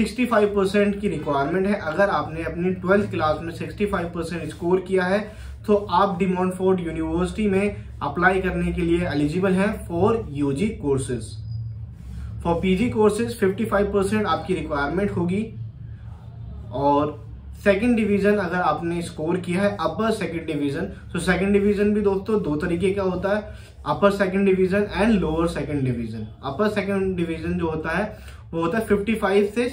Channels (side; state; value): both; identical; correlation 1.00